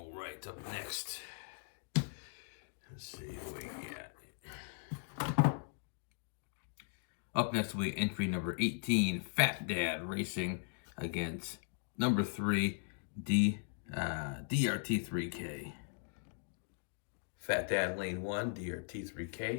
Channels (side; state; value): right; silent; digital silence